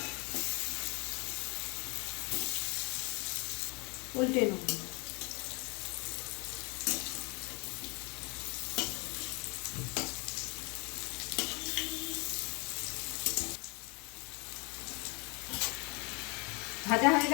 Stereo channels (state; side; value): quieter; right; 30.8 dB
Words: উল্টে নেব। ভাজা হয়ে